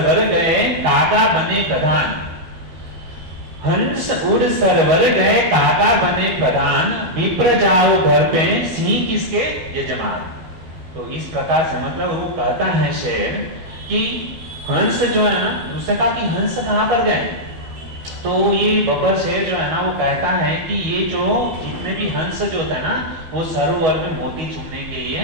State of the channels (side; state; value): left; late; 12 ms